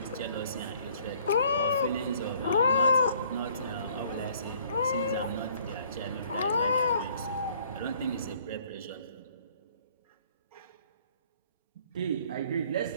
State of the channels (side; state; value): both; inverted; correlation -0.59